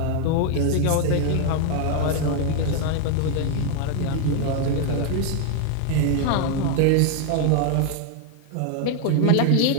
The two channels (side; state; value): both; different; correlation 0.00